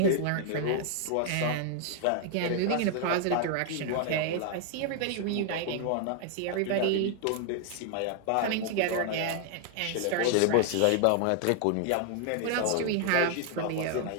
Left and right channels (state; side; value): different; both; correlation 0.00